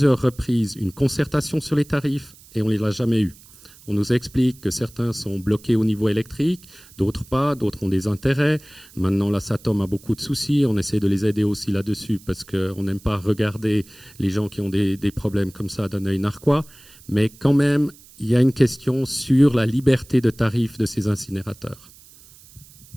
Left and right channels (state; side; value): noise; right; hiss, 24 dB below the sound